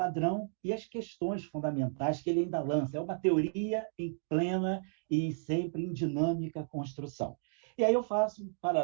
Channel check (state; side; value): silent; left; digital silence